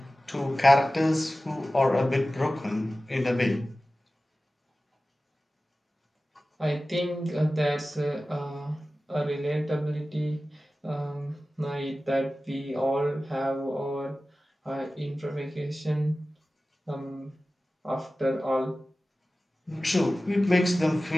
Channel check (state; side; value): normal; both; correlation 0.96